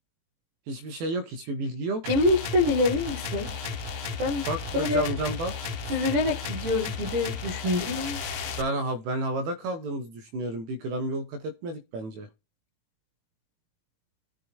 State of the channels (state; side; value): late; left; 18 ms